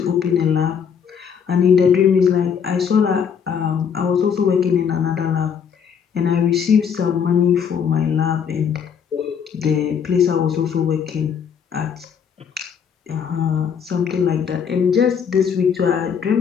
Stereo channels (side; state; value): right; quieter; 7.2 dB